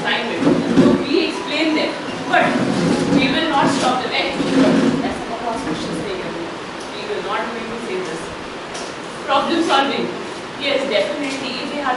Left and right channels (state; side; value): identical; both; correlation 1.00